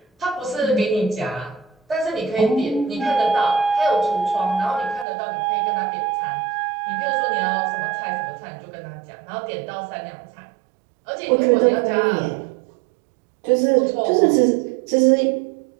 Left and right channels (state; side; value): drops out; left; at 5.1 s